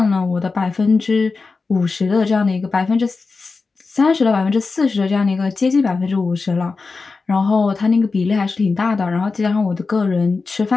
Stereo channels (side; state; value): right; quieter; 4.2 dB